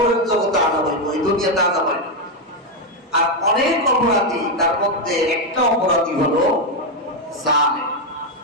জগতে আযাব হইব, এই দুনিয়াতে আযাব হয় না। আর অনেক অপরাধী, তার মধ্যে একটা অপরাধী হলো জালেম।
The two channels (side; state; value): both; normal; correlation 0.04